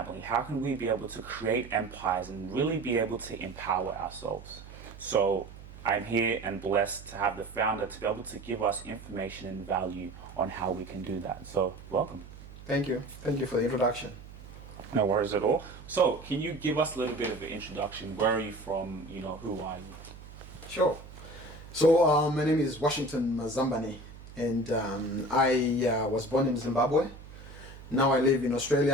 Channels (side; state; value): right; noise; hum, 16 dB below the sound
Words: How can we be able to create empires and really be able to empower ourselves? So I'm here and blessed to have the founder to be able to give us information and value on how we can do that. So welcome. Thank you. Thank you for the introduction. No worries at all. So can you give us a little bit of an introduction? Where are you from? You know, who are you? Sure. So my name is Washington Mazambani, and I was born in Zimbabwe. Now I live in